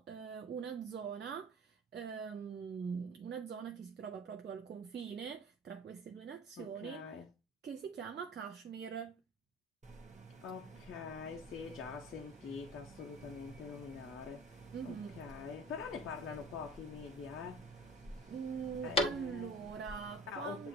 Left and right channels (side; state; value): both; normal; correlation 0.41